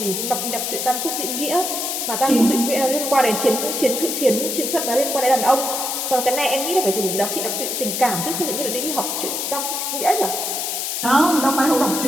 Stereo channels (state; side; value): noise; left; hiss, 2 dB below the sound